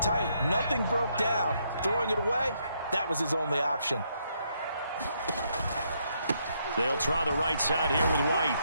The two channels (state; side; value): inverted; both; correlation -0.75